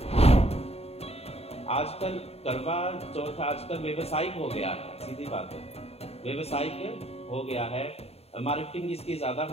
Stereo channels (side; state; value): right; late; 0.30 ms